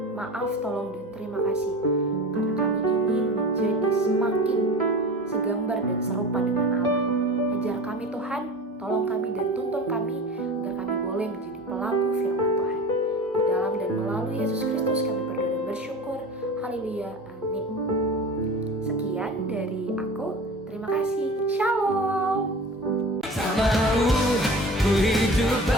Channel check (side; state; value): both; normal; correlation 0.35